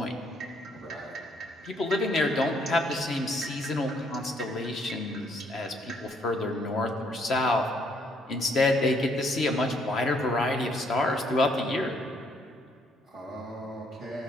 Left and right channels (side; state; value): both; normal; correlation 0.68